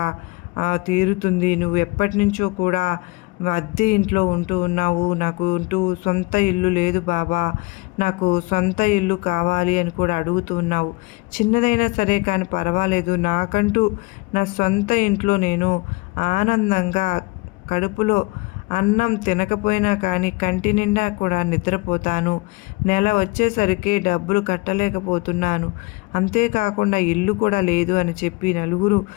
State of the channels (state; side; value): quieter; right; 24.7 dB